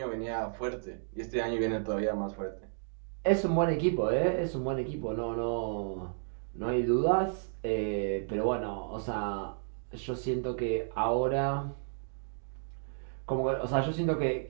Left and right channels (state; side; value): silent; left; digital silence